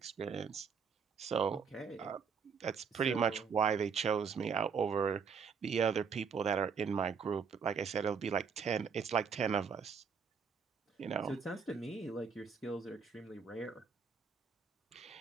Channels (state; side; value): quieter; left; 6.1 dB